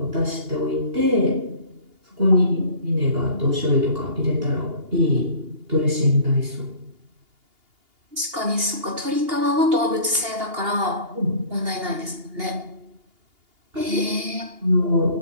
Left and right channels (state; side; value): late; left; 2.8 ms